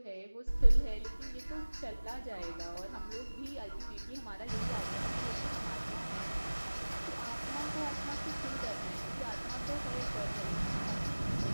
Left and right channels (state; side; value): inverted; both; correlation -1.00